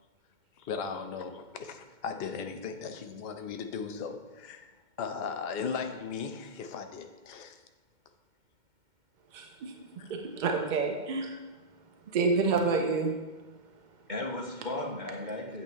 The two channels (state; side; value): late; left; 2.1 ms